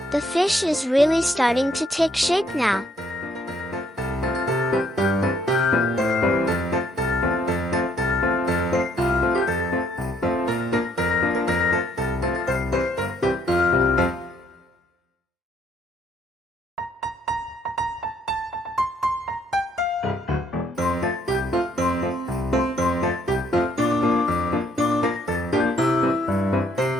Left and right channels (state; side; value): normal; both; correlation 0.68